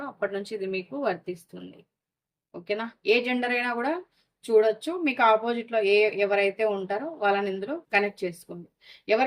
అప్పటి నుంచి ఇది మీకు వర్తిస్తుంది. ఓకేనా? ఏ జెండర్ అయినా కూడా చూడొచ్చు. మీకు ఆపోజిట్లో ఎవరైతే ఉంటారో వాళ్ళని ఇందులో కనెక్ట్ చేసుకోండి.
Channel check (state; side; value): identical; both; correlation 1.00